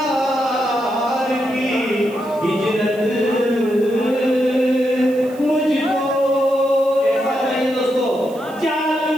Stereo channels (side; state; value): right; noise; hiss, 24 dB below the sound